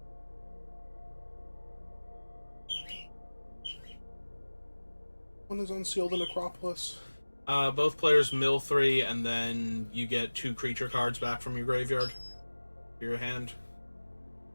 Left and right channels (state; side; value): inverted; both; correlation -1.00